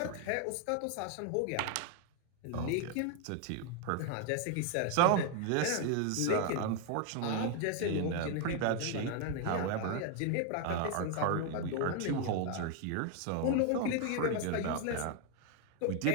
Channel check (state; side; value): different; both; correlation 0.00